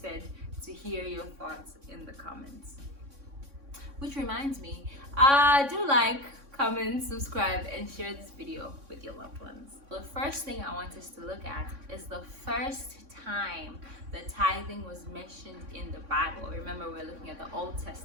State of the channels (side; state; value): left; late; 3.6 ms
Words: to hear your thoughts in the comments. Which reminds me, do like, comment, subscribe, and share this video with your loved ones. The first thing I want us to look at is the first time that tithing was mentioned in the Bible. Remember, we're looking at the Old